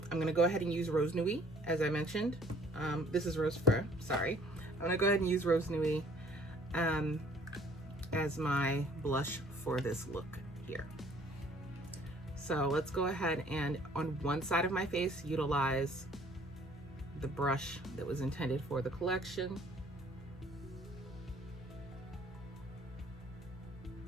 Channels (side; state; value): both; normal; correlation 0.57